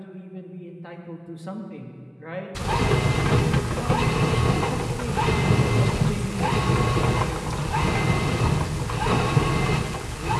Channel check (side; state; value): both; identical; correlation 1.00